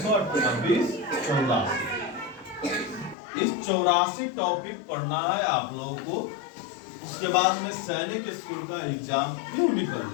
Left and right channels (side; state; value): right; drops out; at 3.2 s